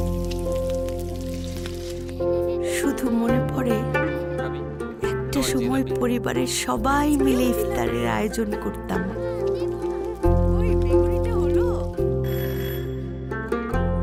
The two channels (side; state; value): both; identical; correlation 1.00